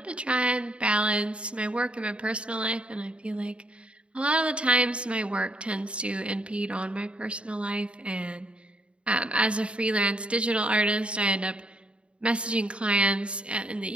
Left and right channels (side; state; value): left; late; 0.058 ms